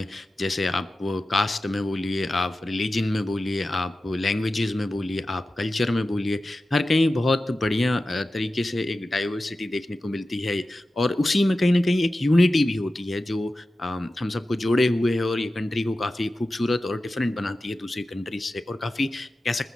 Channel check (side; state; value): both; normal; correlation 0.94